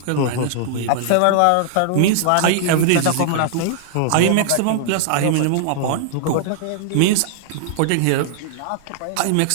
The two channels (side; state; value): both; different; correlation -0.01